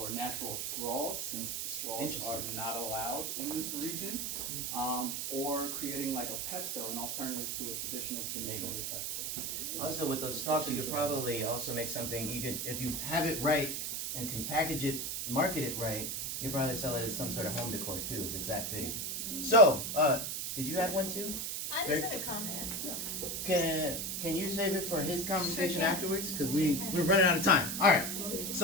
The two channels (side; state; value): right; noise; hiss, 2 dB below the sound